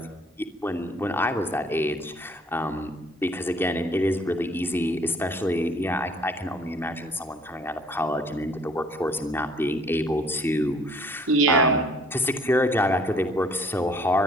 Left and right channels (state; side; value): normal; both; correlation 0.57